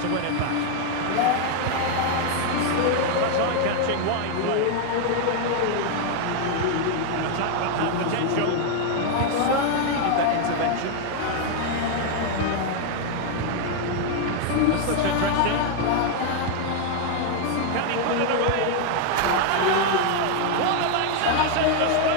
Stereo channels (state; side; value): different; both; correlation 0.00